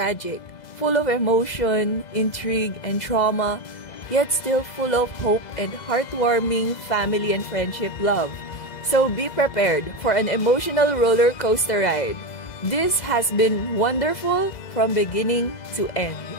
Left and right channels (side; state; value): right; late; 2.0 ms